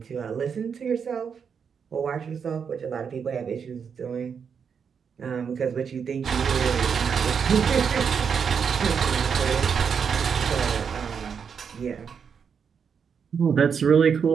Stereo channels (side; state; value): left; quieter; 6.7 dB